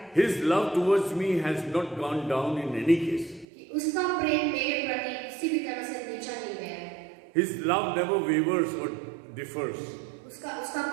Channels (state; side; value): drops out; left; at 3.5 s